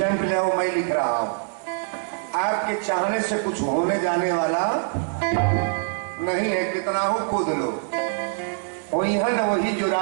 ले आओ, मैं लिख रहा हूं, आपके चाहने से कुछ होने जाने वाला नहीं है, कितना हो कूद लो। वही जो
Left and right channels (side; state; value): left; silent; 63 dB below the other